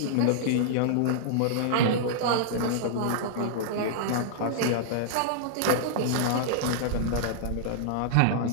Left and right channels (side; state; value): both; different; correlation -0.02